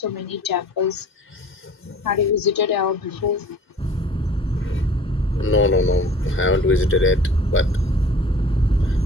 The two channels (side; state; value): both; normal; correlation 0.47